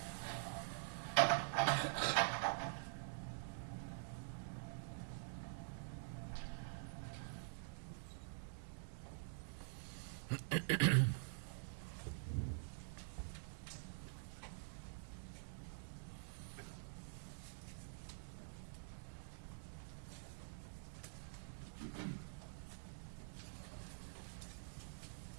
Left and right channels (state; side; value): silent; left; digital silence